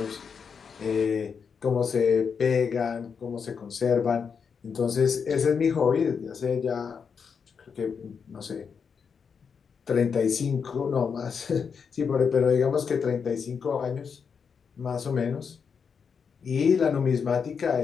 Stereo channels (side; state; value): right; quieter; 6.3 dB